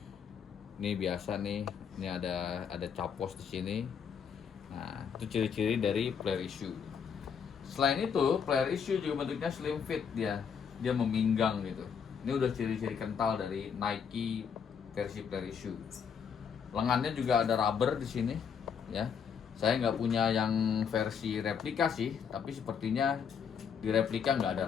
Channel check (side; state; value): right; quieter; 7.0 dB